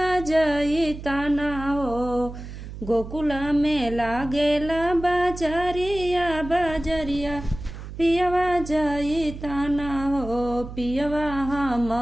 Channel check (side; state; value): right; noise; hum, 11 dB below the sound